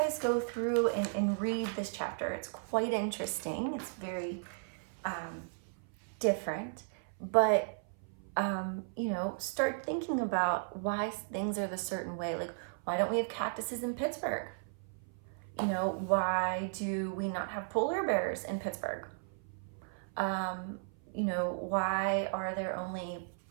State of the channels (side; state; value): left; silent; 54 dB below the other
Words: go through and read this chapter. It's quite interesting. It's very different, but you know, start thinking about why things are the certain way. Like, why don't we have cactuses in Pittsburgh? You know, why do we not have polar bears in Pittsburgh? You know, why are there only,